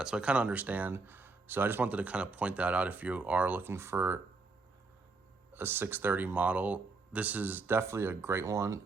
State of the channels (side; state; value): left; quieter; 3.8 dB